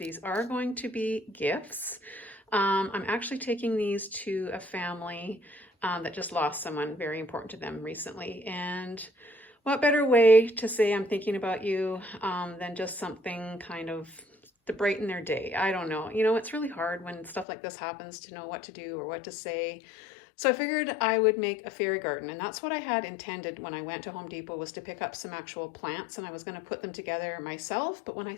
are going to be gifts. I'm actually taking these to a family that just lost someone very important to them recently. And what better way to say I'm thinking about you than just something kind of to brighten their day. I don't know. You know, it's really hard when stuff like this happens to know what to do or what to say. So I figured I would make a fairy garden, and that's what I had intended when I went to Home Depot, was to pick up some actual plants, and I was going to put them together myself. But when I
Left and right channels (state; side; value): drops out; right; at 17.4 s